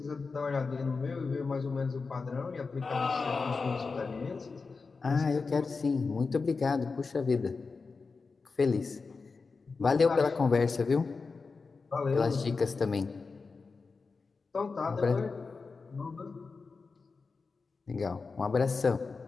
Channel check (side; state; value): right; quieter; 4.5 dB